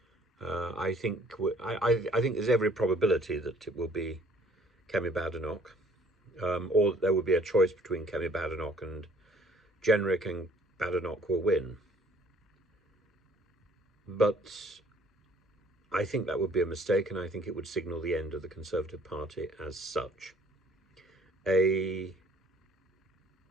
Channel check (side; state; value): both; normal; correlation 0.57